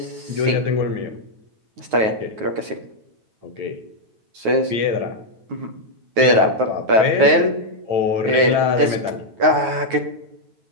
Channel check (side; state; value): left; late; 9.3 ms